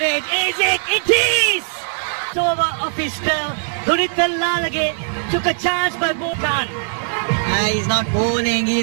it? Is it? It is! It's over of his spell. Dunit Lalage took a chance by Bhutan. He's not bowling,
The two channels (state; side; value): silent; left; digital silence